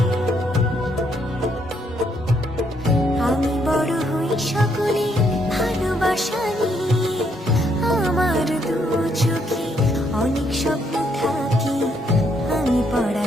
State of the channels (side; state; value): both; normal; correlation 0.73